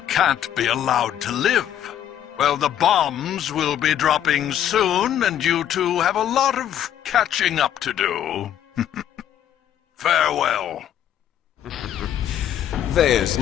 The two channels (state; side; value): quieter; right; 10.7 dB